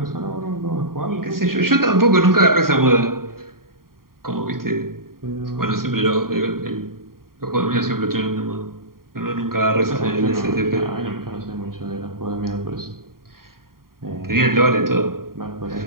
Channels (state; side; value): late; left; 0.92 ms